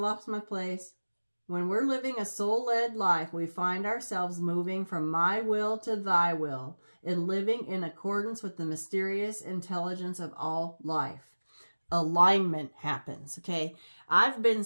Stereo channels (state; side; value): inverted; both; correlation -1.00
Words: my place. When we're living a soul-led life, we find ourselves moving from my will to thy will and living in accordance with the mysterious intelligence of all life. Alignment happens, okay? I've been